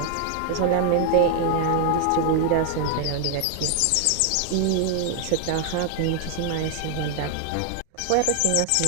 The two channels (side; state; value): both; different; correlation 0.00